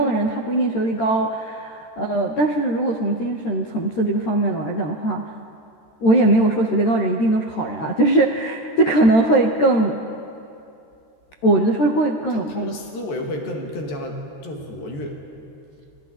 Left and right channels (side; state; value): right; late; 14 ms